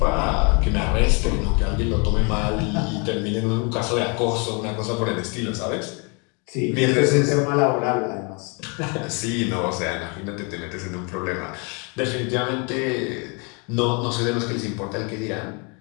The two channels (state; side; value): quieter; right; 33.5 dB